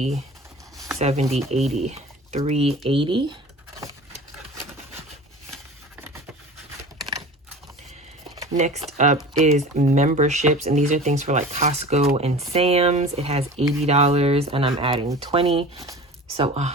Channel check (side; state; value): both; normal; correlation 0.38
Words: 70, 80, 380. Next up is memberships, and these are things for like Costco and Sam's. It has $80, and I'm adding 20. So